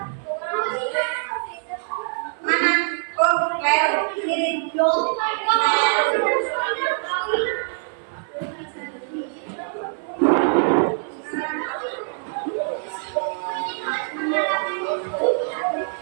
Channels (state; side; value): silent; left; 61 dB below the other